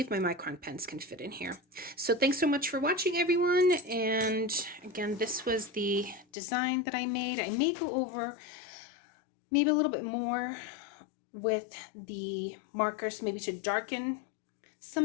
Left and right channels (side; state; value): right; drops out; at 6.2 s